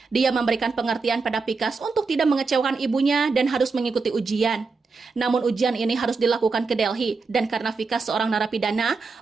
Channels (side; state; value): left; quieter; 4.4 dB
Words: Dia memberikan pengertian pada Vikas untuk tidak mengecewakan ibunya dan harus mengikuti ujian. Namun ujian ini harus dilakukan ke Delhi, dan karena Vikas seorang narapidana,